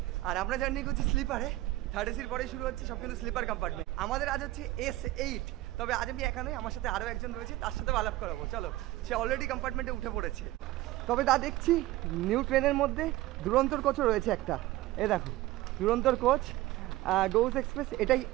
আর আমরা জার্নি করছি স্লিপারে। থার্ড এসির পরে শুরু হচ্ছে সব কিন্তু স্লিপার কম্পার্টমেন্ট। আমাদের আজ হচ্ছে S8। তবে আজ আমি একা নই, আমার সাথে আরও একজন রয়েছে, তার সাথেও আলাপ করাবো। চলো, সে অলরেডি কম্পার্টমেন্টে উঠে পড়েছে। তবে তা দেখছি নিউ ট্রেনের মধ্যে দুরন্তর কোচও রয়েছে একটা। এ দেখো, দুরন্তর কোচ গৌড় এক্সপ্রেস, এটাই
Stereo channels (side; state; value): left; quieter; 17.0 dB